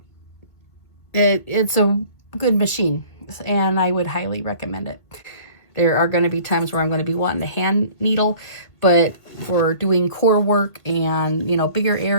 it's a good machine, and I would highly recommend it. There are going to be times where I'm going to be wanting to hand needle, but for doing core work and, you know, bigger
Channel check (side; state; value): right; late; 2.0 ms